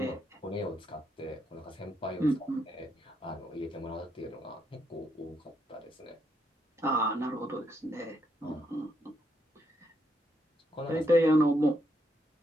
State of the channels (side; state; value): both; normal; correlation 0.77